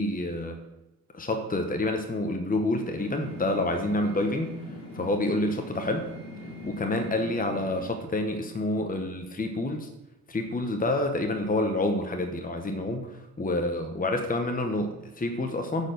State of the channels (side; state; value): both; normal; correlation 0.38